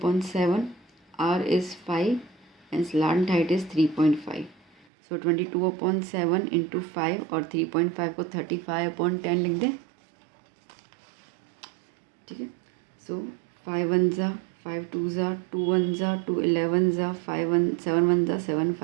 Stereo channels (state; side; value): drops out; left; at 4.9 s